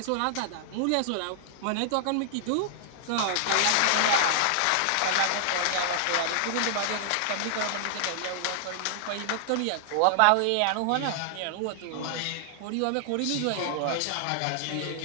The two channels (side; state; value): both; different; correlation -0.01